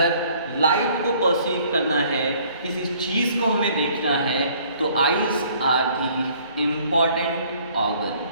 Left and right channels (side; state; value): both; inverted; correlation -0.59